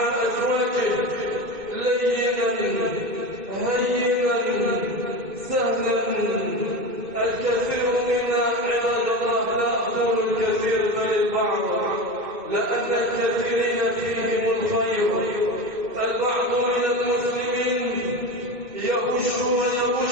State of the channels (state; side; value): late; left; 1.9 ms